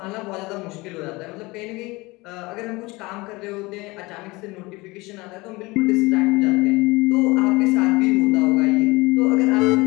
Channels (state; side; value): quieter; right; 22.9 dB